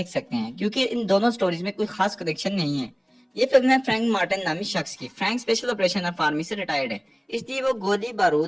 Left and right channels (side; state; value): both; identical; correlation 1.00